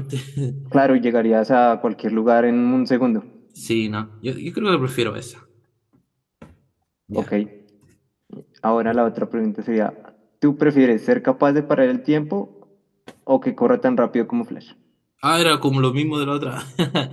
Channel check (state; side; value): identical; both; correlation 1.00